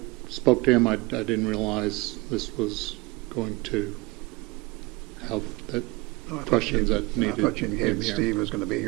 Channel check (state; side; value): quieter; left; 23.8 dB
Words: spoke to him. I didn't realize this was going to have that questions that needed. I thought you indicated Steve was going to be